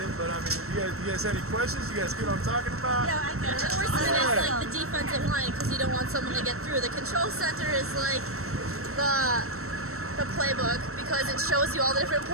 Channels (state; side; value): late; left; 0.63 ms